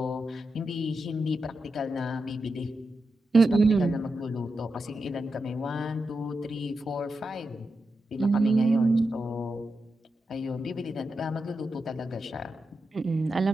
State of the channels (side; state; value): both; normal; correlation 0.88